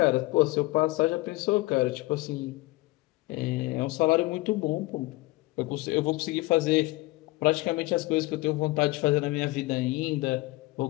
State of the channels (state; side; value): quieter; right; 21.1 dB